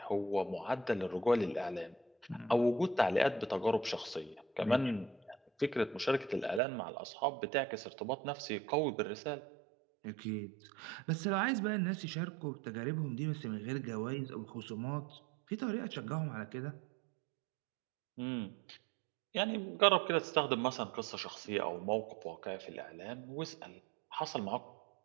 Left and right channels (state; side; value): drops out; left; at 6.6 s